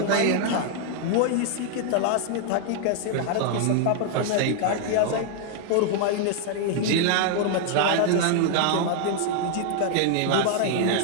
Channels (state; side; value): different; both; correlation 0.00